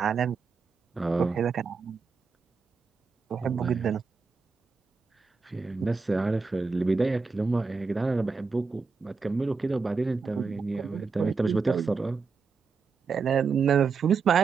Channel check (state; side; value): quieter; left; 4.8 dB